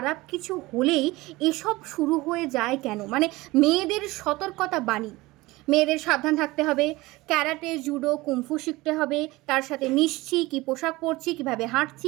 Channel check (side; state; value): left; quieter; 20.5 dB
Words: কিছু হলেই এসব শুরু হয়ে যায় কেন? মানে মেয়েদের সতর্কতা বাণী, মেয়েদের সাবধান থাকতে হবে, ক্যারাটে, জুডো, কুম্ফু শিখতে হবে, কার সাথে মিশছি, কী পোশাক পরছি, কীভাবে